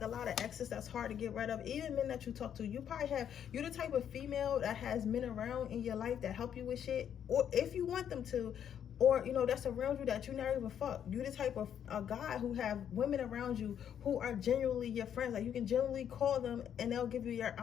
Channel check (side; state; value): right; quieter; 9.1 dB